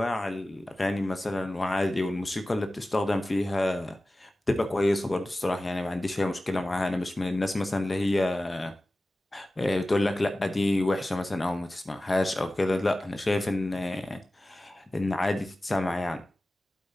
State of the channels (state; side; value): normal; both; correlation 0.96